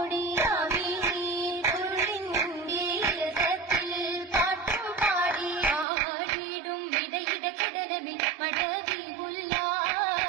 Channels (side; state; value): left; drops out; at 5.9 s